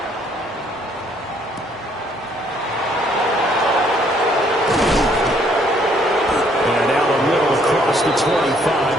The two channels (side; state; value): both; normal; correlation 0.65